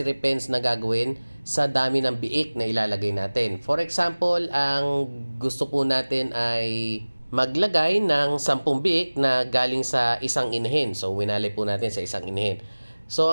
pens na gagawin sa dami ng biik na ilalagay natin. For example, ang gusto po natin ay maglagay ng 10 biik na galing sa isang inahin. So, winalay po natin sa isang inahin. So,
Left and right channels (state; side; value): inverted; both; correlation -1.00